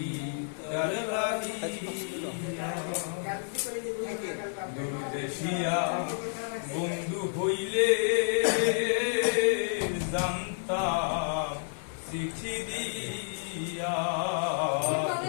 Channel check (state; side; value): silent; right; digital silence